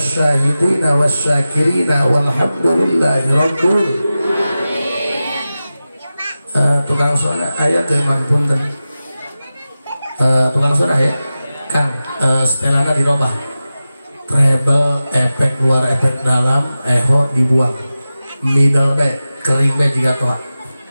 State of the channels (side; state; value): both; inverted; correlation -0.95